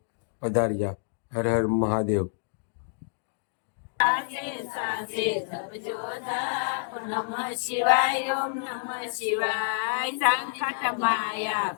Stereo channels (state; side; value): silent; right; digital silence